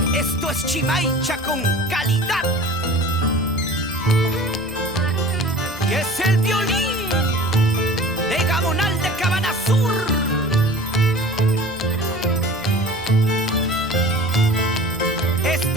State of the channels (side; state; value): left; noise; rumble, 23 dB below the sound